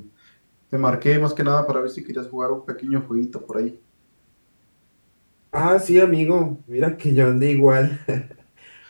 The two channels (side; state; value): both; inverted; correlation -1.00